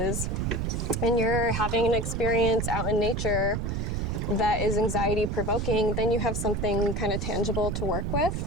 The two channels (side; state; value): right; noise; rumble, 1 dB below the sound